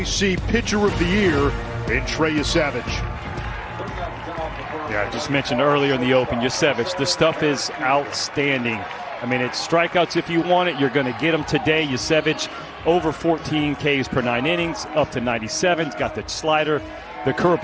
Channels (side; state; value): both; identical; correlation 1.00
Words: Pitcher of the Year in Trey Yesavage. Yeah, I just mentioned earlier in the Open, Yesavage, the stuff is outstanding. I mean, it's strikeouts if you want it. You're going to get them today. Yesavage, over 14 Ks per 9 innings, up to 97. He's got the slider, the